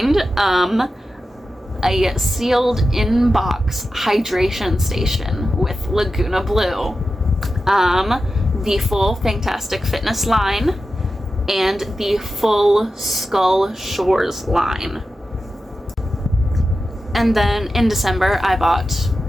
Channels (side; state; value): both; normal; correlation 0.92